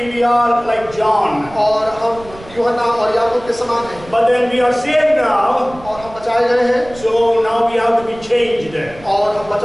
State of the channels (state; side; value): noise; right; rumble, 19 dB below the sound